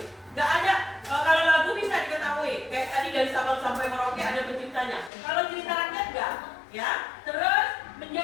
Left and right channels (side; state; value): right; drops out; at 5.1 s